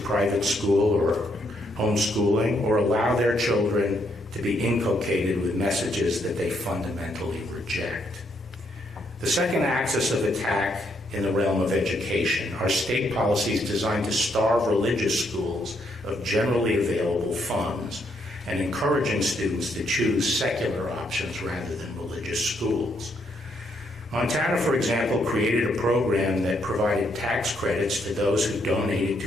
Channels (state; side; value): normal; both; correlation 0.74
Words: school or homeschooling, or allow their children to be inculcated with messages that they fundamentally reject. The second axis of attack in the realm of education are state policies designed to starve religious schools of generally available funds and encouraging students to choose secular options rather than religious schools. Montana, for example, created a program that provided tax credits to those who donated